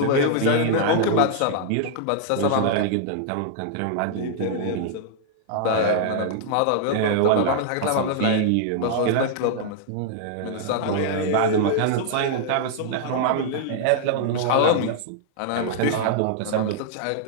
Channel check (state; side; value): different; both; correlation -0.01